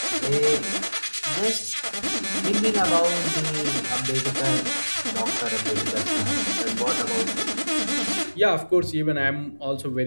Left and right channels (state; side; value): inverted; both; correlation -1.00